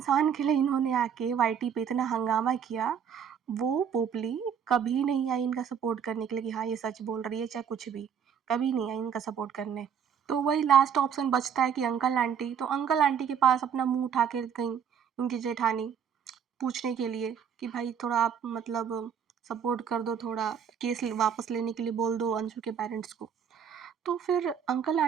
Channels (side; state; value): left; quieter; 7.8 dB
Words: के लिए इन्होंने आके वाईटी पे इतना हंगामा किया, वो पोपली कभी नहीं आई इनका सपोर्ट करने के लिए कि हाँ, ये सच बोल रही है, चाहे कुछ भी। कभी नहीं आई इनका सपोर्ट करने। तो वही लास्ट ऑप्शन बचता है कि अंकल आंटी। तो अंकल आंटी के पास अपना मुँह उठा के गईं उनकी जेठानी पूछने के लिए कि भाई थोड़ा आप मतलब सपोर्ट कर दो, थोड़ा केस वापस लेने के लिए बोल दो अंशु के पेरेंट्स को। तो फिर अंकल